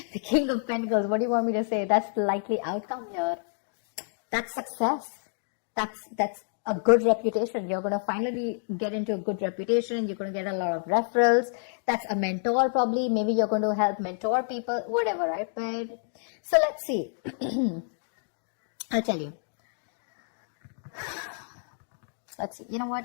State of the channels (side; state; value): right; silent; digital silence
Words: The King of Pentacles. What do you want me to say? That's the likely outcome here. That's success. That's a good reputation. You're going to finally get into a good reputation. You're going to get a lot of referrals. That's a mentor probably. Maybe you're going to help mentor people, whatever, right? But so let's see. I'll tell you. Let's see. You know